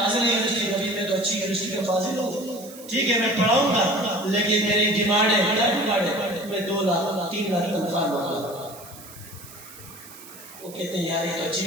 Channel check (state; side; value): noise; right; hiss, 18 dB below the sound